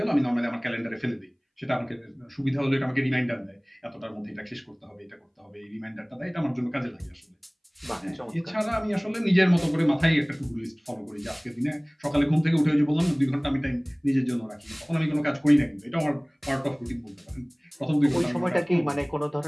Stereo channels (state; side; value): identical; both; correlation 1.00